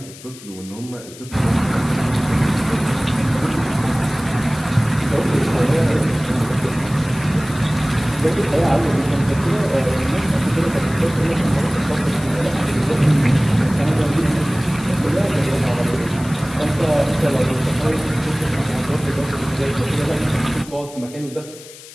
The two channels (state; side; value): noise; left; hiss, 18 dB below the sound